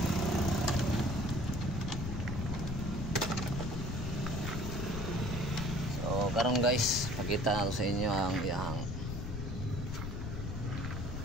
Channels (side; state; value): left; noise; rumble, 4 dB below the sound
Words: So karon guys, pakita nato sa inyo ang iyang